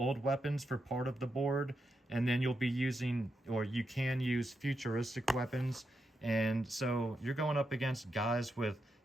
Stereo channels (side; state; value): both; normal; correlation 0.85